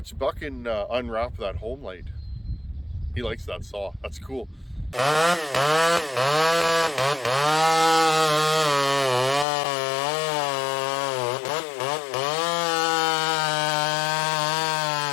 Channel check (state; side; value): drops out; right; at 9.5 s